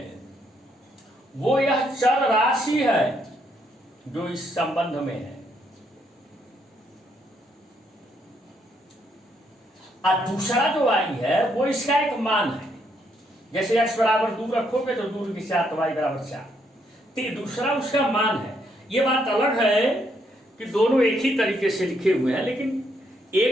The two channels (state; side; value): normal; both; correlation 0.74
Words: वो यह चर राशि है जो इस संबंध में है, और दूसरा जो y है वो इसका एक मान है। जैसे x बराबर 2 रखोगे तो 2 की 4 तो y बराबर 4, तो दूसरा उसका मान है। ये बात अलग है कि दोनों एक ही तरीके से लिखे हुए हैं, लेकिन